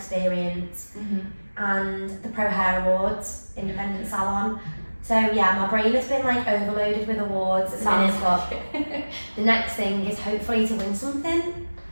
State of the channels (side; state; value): both; inverted; correlation -1.00